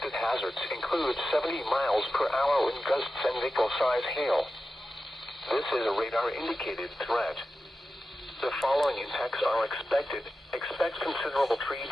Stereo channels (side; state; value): both; normal; correlation 0.92